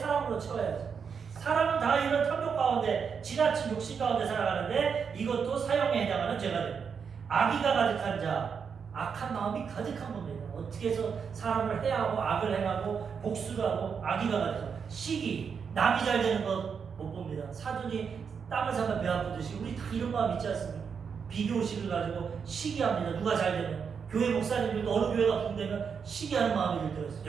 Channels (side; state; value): left; quieter; 6.4 dB